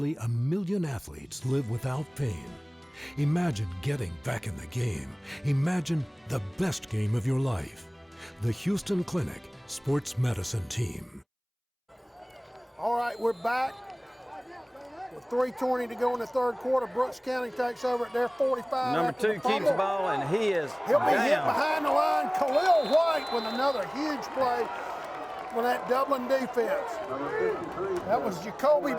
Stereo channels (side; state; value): both; identical; correlation 1.00